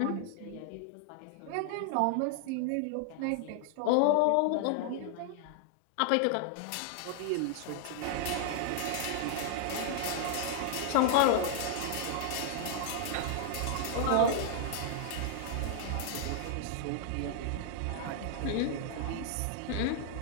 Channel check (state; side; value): different; both; correlation 0.00